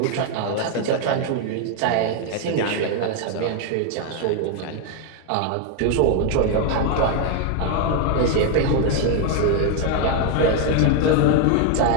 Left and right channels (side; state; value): both; different; correlation 0.01